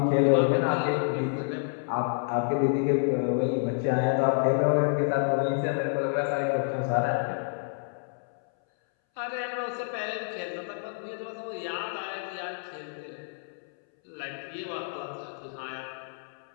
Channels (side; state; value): right; silent; 59 dB below the other